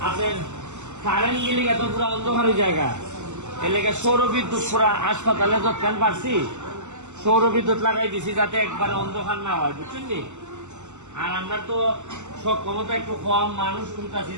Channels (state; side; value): late; left; 0.84 ms